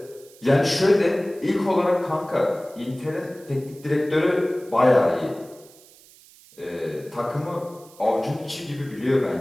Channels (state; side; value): noise; right; hiss, 25 dB below the sound